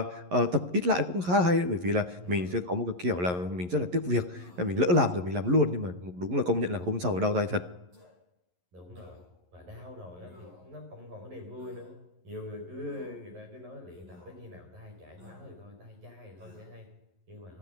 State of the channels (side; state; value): left; late; 11 ms